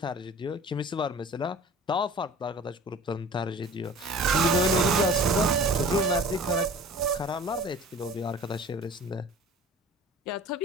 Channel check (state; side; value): normal; both; correlation 0.44